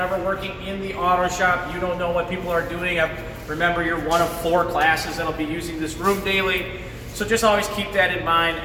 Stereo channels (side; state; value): both; identical; correlation 1.00